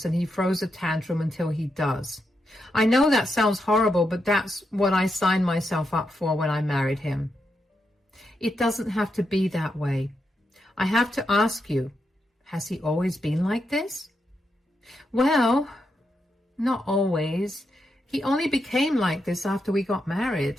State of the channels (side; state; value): both; normal; correlation 0.84